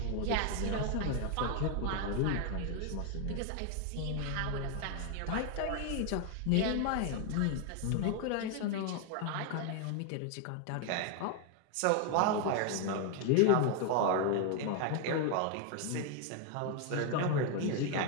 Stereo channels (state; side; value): different; both; correlation 0.01